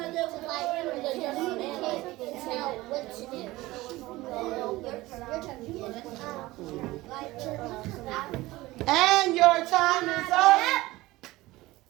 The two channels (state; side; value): quieter; left; 18.9 dB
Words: And your time is up.